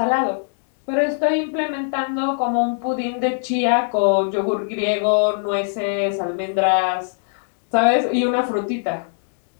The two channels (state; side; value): silent; right; digital silence